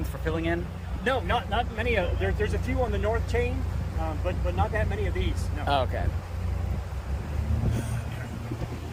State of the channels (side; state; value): both; identical; correlation 1.00